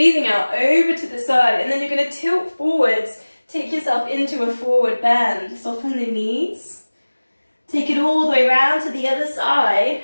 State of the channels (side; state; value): both; inverted; correlation -1.00